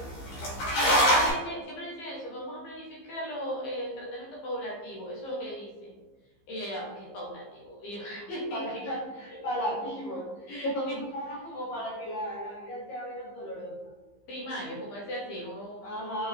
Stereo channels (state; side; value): late; right; 15 ms